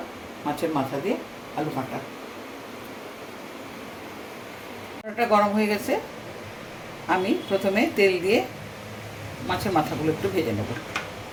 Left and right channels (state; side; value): identical; both; correlation 1.00